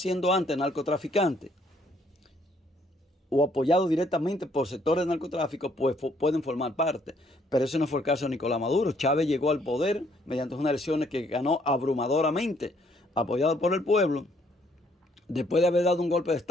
antes narcotraficantes o apoyados directamente por sectores de narcotráfico, pues pueden formar parte. Pero ese no fue el caso de Nicolás Maduro. Chávez llegó al poder mediante unas elecciones que ganó abrumadoramente, apoyado por el pueblo. Después de haber dado un golpe de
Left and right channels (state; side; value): normal; both; correlation 0.67